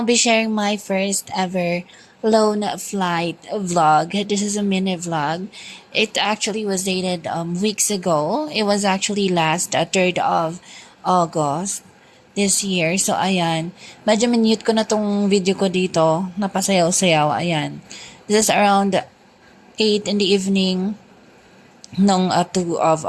be sharing my first ever lone flight vlog. This is a mini vlog. It actually was dated weeks ago. It was actually last 3rd of August this year. So ayan, medyo minute ko na tong video ko dito, napasayaw-sayaw. Ayan, this is around 8 in the evening nung 2 of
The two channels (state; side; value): identical; both; correlation 1.00